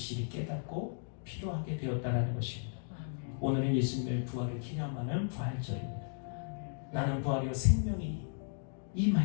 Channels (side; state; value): right; silent; digital silence